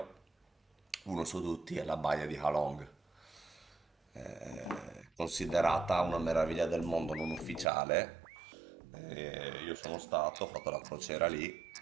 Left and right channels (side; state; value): left; drops out; at 7.7 s